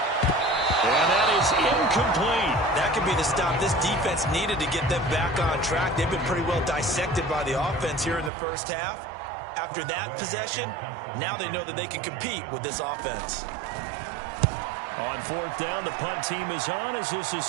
And that is incomplete. That could be the stop this defense needed to get them back on track. They've been pretty well dissected by the offense here in the first half. After that possession, now they know that they can compete with this offense. On fourth down, the punt team is on as this is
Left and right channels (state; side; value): drops out; left; at 8.3 s